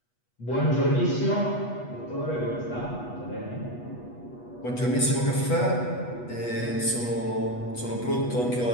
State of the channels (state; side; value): late; right; 8.2 ms